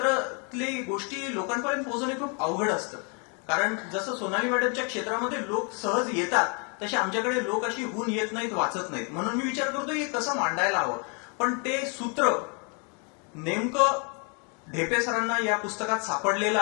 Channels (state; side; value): quieter; right; 36.2 dB